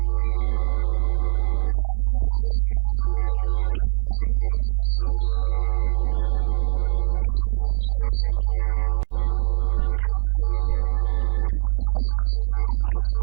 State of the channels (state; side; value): silent; left; digital silence